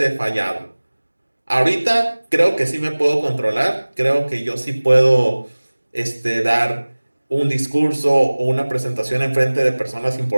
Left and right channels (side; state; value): both; inverted; correlation -1.00